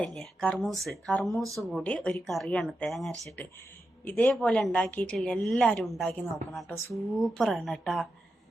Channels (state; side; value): normal; both; correlation 0.88